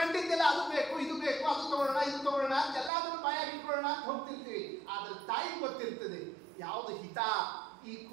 ಅದು ಬೇಕು, ಇದು ಬೇಕು, ಅದು ತಗೊಳ್ಳೋಣ, ಇದು ತಗೊಳ್ಳೋಣ ಅಂತ ಎಲ್ಲದನ್ನು ಬಾಯಾಗಿ ಇಟ್ಕೊಳ್ಳೋಣ ಅಂತ ಹೋಗ್ತಿರ್ತೀವಿ. ಆದ್ರೆ ತಾಯಿ ಗೊತ್ತಿರ್ತದೆ ಯಾವುದು ಹಿತ ಈ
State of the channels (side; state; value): left; drops out; at 2.9 s